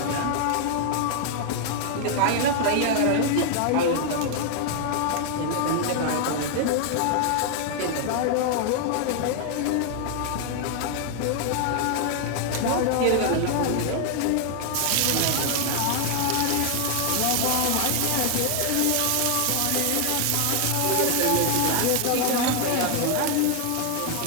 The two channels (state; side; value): different; both; correlation 0.00